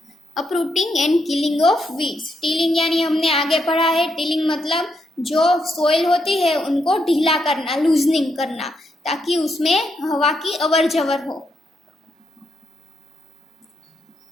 uprooting and killing of weeds. Tilling यानी हमने आगे पढ़ा है, टिलिंग मतलब जो सोइल होती है उनको ढीला करना, लूजनिंग करना, ताकि उसमें हवा की अवर जवर हो.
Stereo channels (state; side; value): normal; both; correlation 0.80